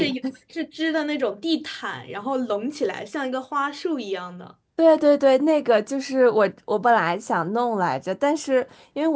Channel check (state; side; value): identical; both; correlation 1.00